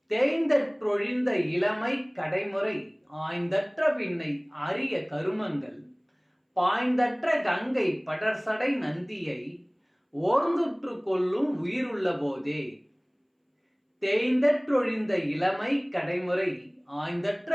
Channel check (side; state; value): both; identical; correlation 1.00